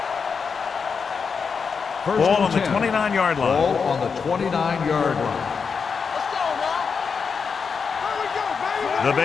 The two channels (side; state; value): right; quieter; 5.7 dB